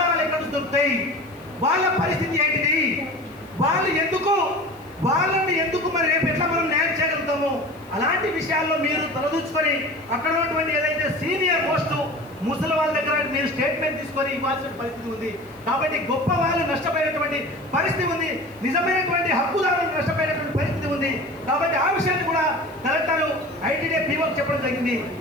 ఎక్కడ దొరుకుతాయి? వాళ్ళ పరిస్థితి ఏంటిది? వాళ్ళని ఎందుకు మరి రేపు ఎట్లా మనం న్యాయం చేయగలుగుతాము? అలాంటి విషయాల్లో మీరు తలదూచుకొని అక్కడ ఉన్నటువంటి ఏదైతే సీనియర్ పోస్టు ముసలి వాళ్ళ దగ్గర మీరు స్టేట్మెంట్ తీసుకొని ఇవ్వాల్సిన పరిస్థితి ఉంది. కాబట్టి గొప్ప వాళ్ళు నష్టపోయినటువంటి పరిస్థితి ఉంది, నిజమైనటువంటి హక్కుదారులు నష్టపోయినటువంటి పరిస్థితి ఉంది. కాబట్టి ఆ విషయాన్ని కూడా కలెక్టర్ ఐటీడీఏ పీఓకి చెప్పడం జరిగింది.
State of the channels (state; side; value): noise; left; hiss, 29 dB below the sound